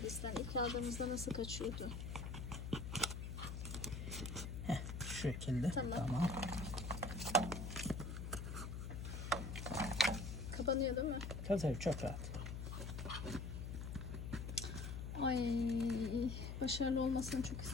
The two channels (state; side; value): noise; left; hum, 5 dB below the sound